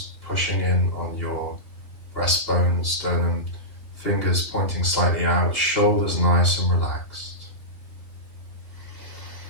pushing in on your breastbone, sternum, fingers pointing slightly out, shoulders nice and relaxed.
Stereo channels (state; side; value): late; right; 3.0 ms